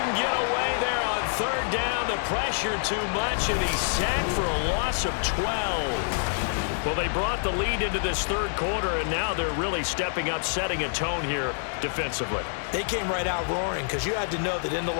get away there on 3rd down. The pressure too much, and he's sacked for a loss of 12. Well, they brought the lead into this 3rd quarter, and now they're really stepping up, setting a tone here defensively. They came right out roaring because you had to know that in the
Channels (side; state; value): right; silent; 60 dB below the other